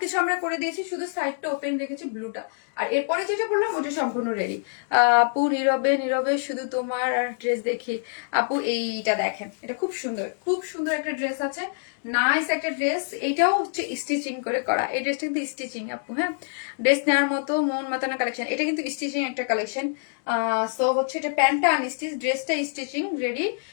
আমরা করে দিয়েছি, শুধু সাইডটা ওপেন রেখেছি ব্লুটা। আর এরপরে যেটা বললাম ওটা সম্পূর্ণ রেডি। আপু নীরবে নীরবে শুধু তোমার আর ড্রেস দেখি। আপু এইটা দেখেন, এটা খুব সুন্দর, খুব সুন্দর একটা ড্রেস আছে, নাইস একটা ড্রেস। এটাও হচ্ছে স্টিচিং করে করা, এই ড্রেসটা কিন্তু স্টিচিং আপু। হ্যাঁ, ড্রেস নেওয়ার মতো মন মাতানো কালেকশন, এটা কিন্তু স্টিচিং একটা কালেকশন। সো হচ্ছে এটা প্যান্টটা আনস্টিচ, ড্রেসটা স্টিচিং রেডি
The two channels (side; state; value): right; silent; digital silence